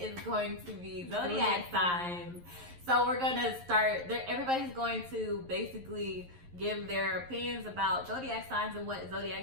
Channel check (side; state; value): left; late; 11 ms